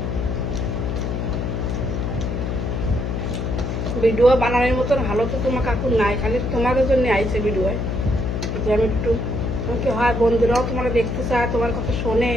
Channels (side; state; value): left; noise; hum, 2 dB below the sound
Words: ভিডিও বানানোর মতন ভালো তো তোমার কাকু নাই, খালি তোমাদের জন্য আইছে ভিডিও। যে আমি একটু আমাকে হয় বন্ধুরাও তোমার দেখতে চায়, তোমার কথা শোনে